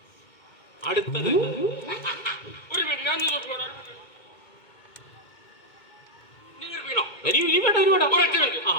അടുത്തത് ഒരു മിനിറ്റ്, ഞാൻ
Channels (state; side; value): late; right; 2.2 ms